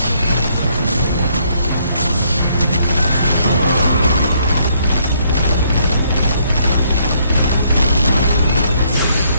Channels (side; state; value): both; inverted; correlation -0.69